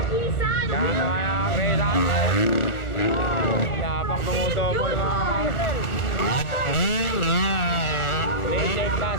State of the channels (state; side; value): late; right; 1.4 ms